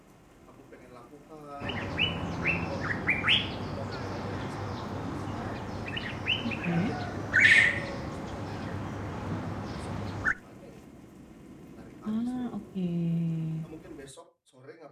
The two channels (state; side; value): identical; both; correlation 1.00